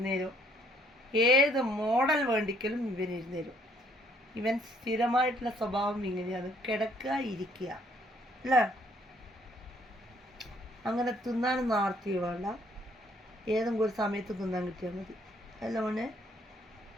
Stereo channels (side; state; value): both; normal; correlation 0.64